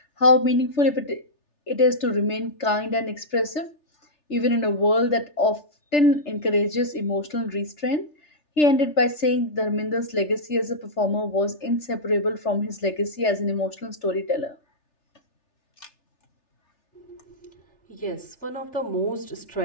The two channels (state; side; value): late; right; 3.4 ms